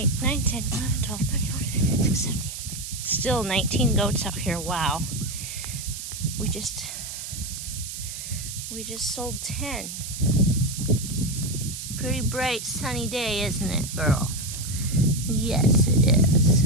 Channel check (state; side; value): noise; right; hiss, 8 dB below the sound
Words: 9, 10, 11, 12, 13, 14, 15, 16, 17. Still 19 goats out here. Wow. We just sold 10. Pretty bright sunny day, isn't it, girl? Yes, it is.